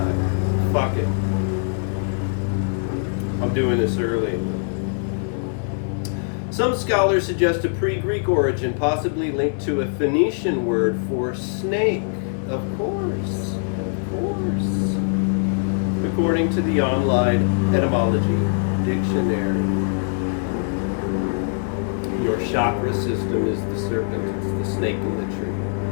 Fuck it. I'm doing this early. Some scholars suggest a pre-Greek origin, possibly linked to a Phoenician word for snake. Of course. According to the online etymology dictionary. chakra system is the serpent, it's the snake in the tree.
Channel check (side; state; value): right; silent; 64 dB below the other